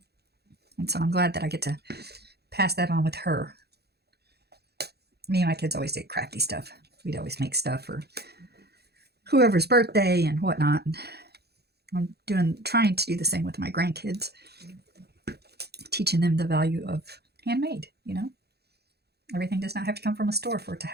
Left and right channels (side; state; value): left; late; 0.47 ms